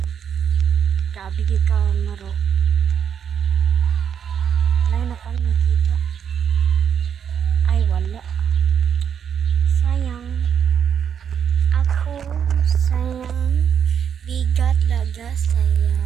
Grabe ka maro. Wala na pang makita. Ay wala. Sayang. Ako sayang. Bigat laga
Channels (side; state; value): left; quieter; 8.0 dB